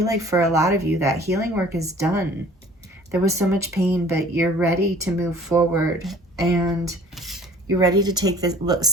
like for a lot of you, that healing work is done. There was so much pain, but you're ready to move forward, and you're ready to take this,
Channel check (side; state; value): both; normal; correlation 0.50